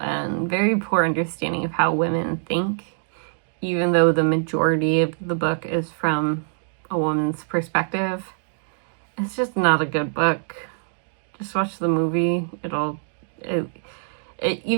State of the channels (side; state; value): left; silent; digital silence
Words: very poor understanding of how women think, even though the majority of the book is from a woman's perspective. It's just not a good book. Just watch the movie.